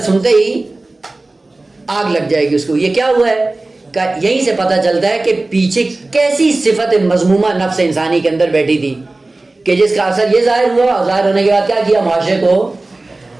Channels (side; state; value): left; quieter; 3.1 dB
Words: سنتے ہی آگ لگ جائے گی اس کو. یہ کیا ہوا ہے؟ یہیں سے پتہ چلتا ہے کہ پیچھے کیسی صفت مذمومہ نفس انسانی کے اندر بیٹھی تھی کہ جس کا اثر یہ ظاہر ہوا, اور ظاہر ہونے کے بعد کیا کیا؟ معاشرے کو